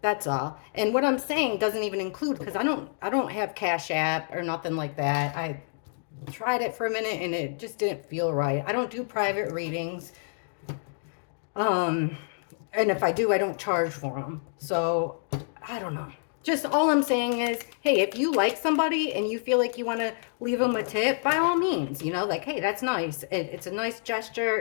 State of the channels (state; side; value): silent; right; digital silence